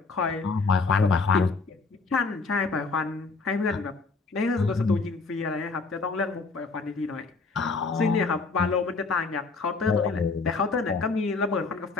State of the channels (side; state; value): right; quieter; 4.1 dB